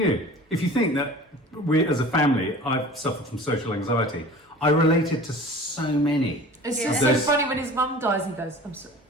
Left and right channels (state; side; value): normal; both; correlation 0.42